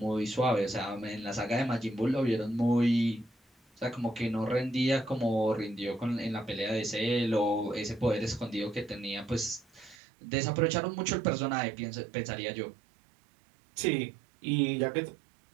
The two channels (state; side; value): drops out; left; at 10.0 s